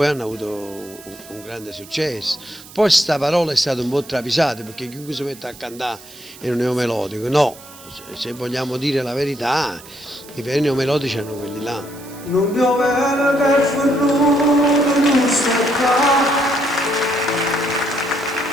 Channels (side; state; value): right; noise; hiss, 19 dB below the sound